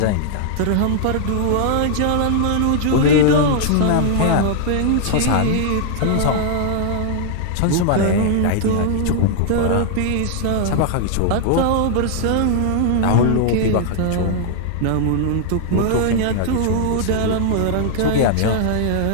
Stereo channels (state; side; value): different; both; correlation -0.01